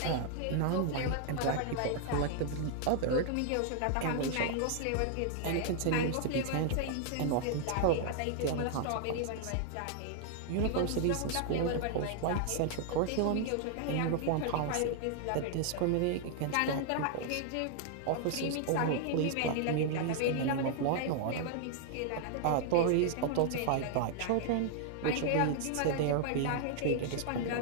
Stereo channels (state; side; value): different; both; correlation 0.00